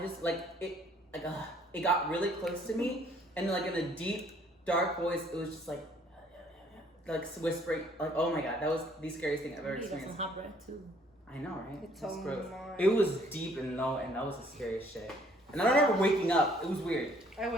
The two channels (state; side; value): normal; both; correlation 0.61